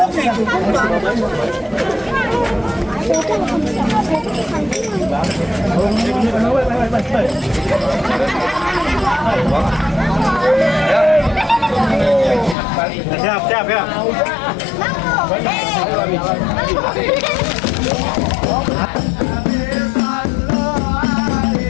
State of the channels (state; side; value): drops out; right; at 12.6 s